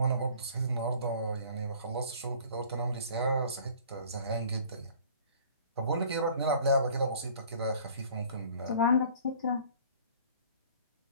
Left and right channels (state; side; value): inverted; both; correlation -0.50